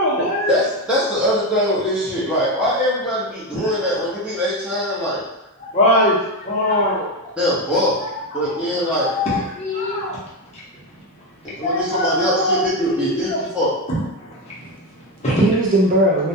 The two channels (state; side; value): normal; both; correlation 0.13